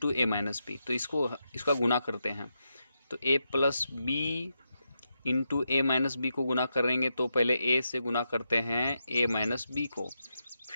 A minus B, तो इसका गुना करते हैं। तो a plus B into A minus B को गुना करेंगे तो पहले a से गुना करते हैं a माइनस बी को,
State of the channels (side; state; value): both; inverted; correlation -0.85